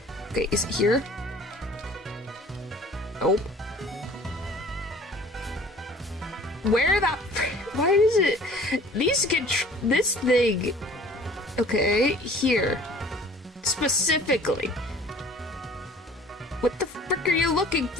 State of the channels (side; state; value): both; normal; correlation 0.49